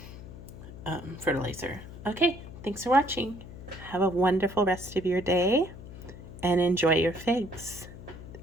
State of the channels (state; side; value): noise; left; hum, 14 dB below the sound